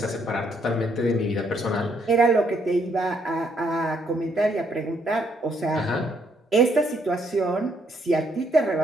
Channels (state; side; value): normal; both; correlation 0.71